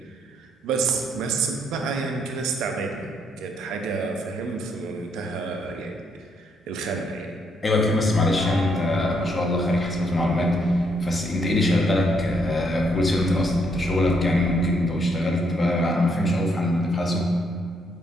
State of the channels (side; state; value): both; normal; correlation 0.73